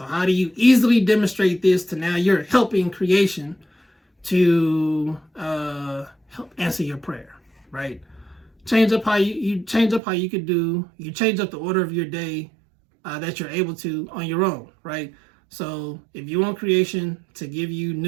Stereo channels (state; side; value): drops out; left; at 10.0 s